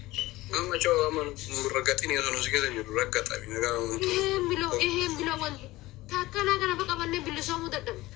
amma coo amma raggaxini osoo nuti keessa jiru raggaxami nagaa wanti eheen biloo wanti takkanaa kana fa qabannee bilisoomuu dadhabne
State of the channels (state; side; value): quieter; right; 18.6 dB